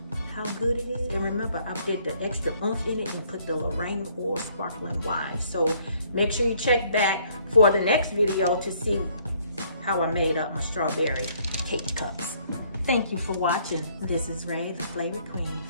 how good it is. And remember, I did the extra oomph in it and put the Lorraine or sparkling wine. So make sure you check back for the next video to see how I made up my strawberry cake cups. Thank you for watching. This is Ray, the Flavor Queen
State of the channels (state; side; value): inverted; both; correlation -0.64